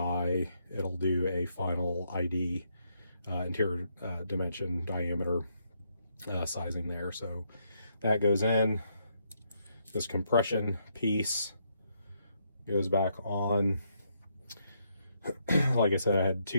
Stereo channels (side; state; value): both; inverted; correlation -0.76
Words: it'll do a final ID, interior dimension, diameter sizing there. So that goes in. This compression piece goes back on. Like I said, I had